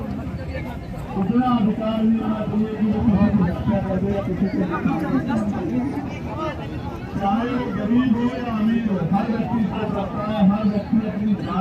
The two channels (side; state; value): both; identical; correlation 1.00